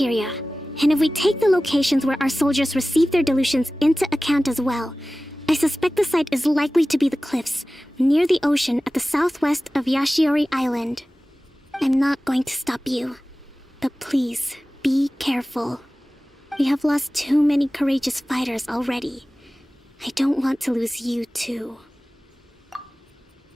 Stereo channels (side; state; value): both; normal; correlation 0.97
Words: and if we take the locations where our soldiers receive their delusions into account as well, I suspect the site is likely to be the cliffs, near the ocean at the southwest of Yashiori Island. I'm not going to stop you, but please, be careful. We have lost too many courageous fighters already. I don't want to lose you too.